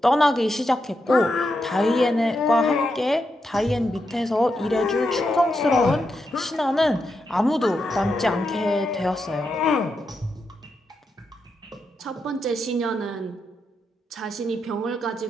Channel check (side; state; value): both; normal; correlation 0.84